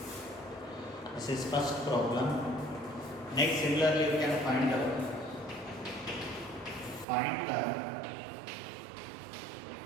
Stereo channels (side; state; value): left; drops out; at 7.1 s